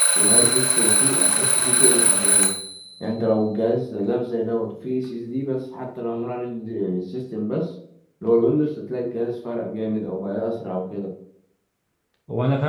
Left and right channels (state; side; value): identical; both; correlation 1.00